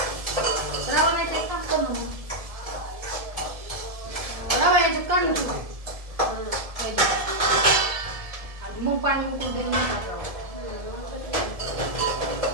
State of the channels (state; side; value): late; left; 1.7 ms